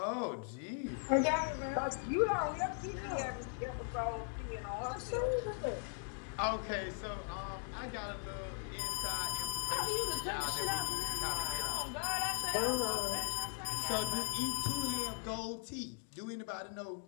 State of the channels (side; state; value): right; silent; 52 dB below the other